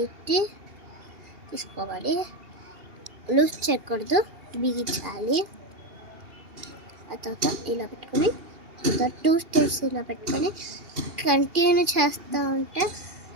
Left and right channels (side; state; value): left; late; 2.8 ms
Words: తీసుకోవాలి. లూజ్ చేయకూడదు, బిగించాలి. ఆ తర్వాత ఇలా పెట్టుకొని 2 స్టెప్స్ ఇలా పెట్టుకొని కంటిన్యూ చేస్తూ ఉంటే